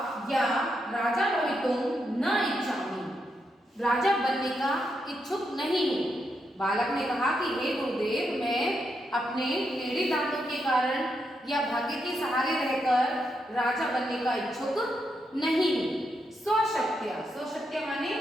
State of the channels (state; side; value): normal; both; correlation 0.82